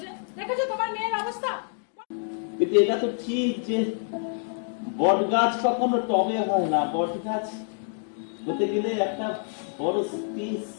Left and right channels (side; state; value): right; silent; 59 dB below the other